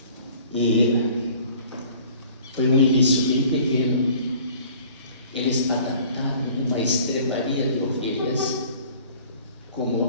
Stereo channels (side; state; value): both; inverted; correlation -0.51